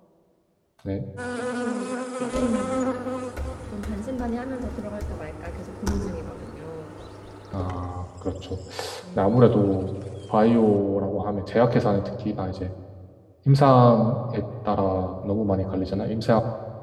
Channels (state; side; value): identical; both; correlation 1.00